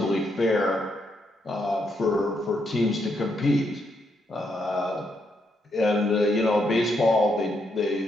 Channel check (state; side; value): normal; both; correlation 0.78